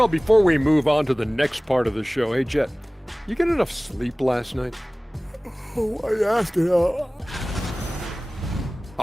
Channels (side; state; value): both; normal; correlation 0.98